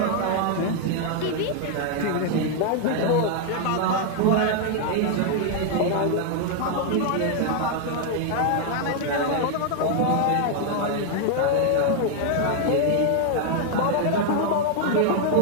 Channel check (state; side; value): different; both; correlation 0.00